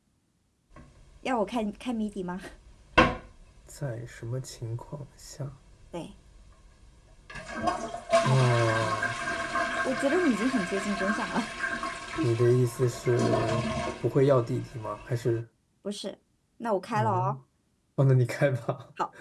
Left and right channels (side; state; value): both; identical; correlation 1.00